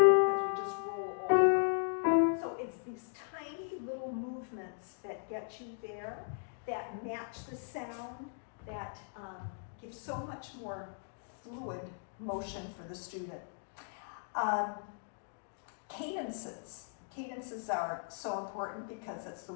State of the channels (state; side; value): silent; right; digital silence